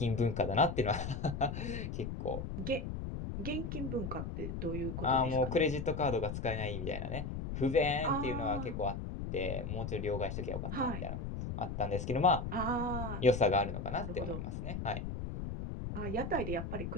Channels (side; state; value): left; noise; rumble, 5 dB below the sound